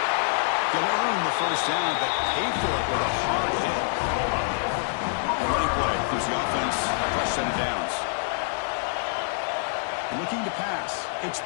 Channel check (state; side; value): silent; right; digital silence